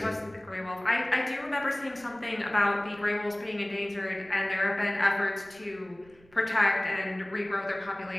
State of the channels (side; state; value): right; noise; rumble, 27 dB below the sound